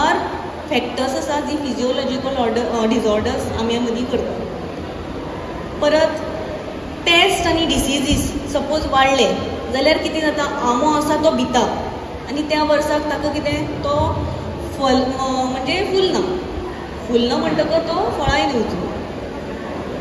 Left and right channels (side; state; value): both; identical; correlation 1.00